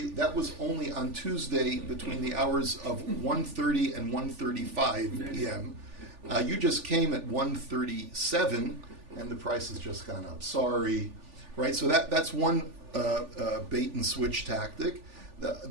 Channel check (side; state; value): left; late; 3.4 ms